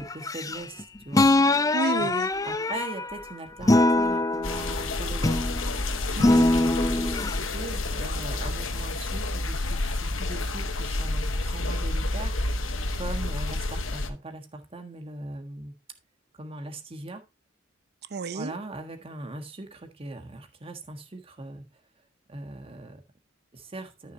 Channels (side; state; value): both; normal; correlation 0.70